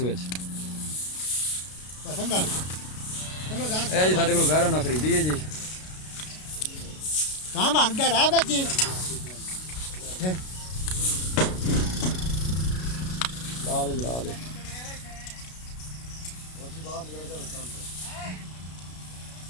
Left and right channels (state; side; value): late; right; 33 ms